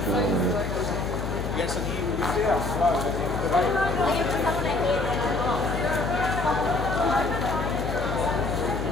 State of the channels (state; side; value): noise; left; hum, 5 dB below the sound